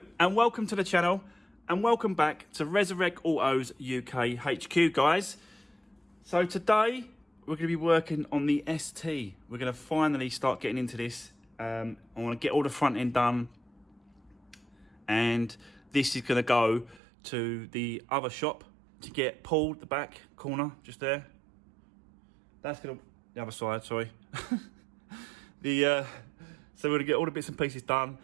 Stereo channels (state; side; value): drops out; left; at 17.0 s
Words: and welcome to the channel and welcome back to Resurwreck Autos UK HQ, guys. So today we're going to be working on the ST. We're going to finally start getting into this. I want to get all the front end done, and this is going to go to the other shop to get pulled, the back corner just there. That's going to the other side, sorry. So we're going to get all the bits and pieces done,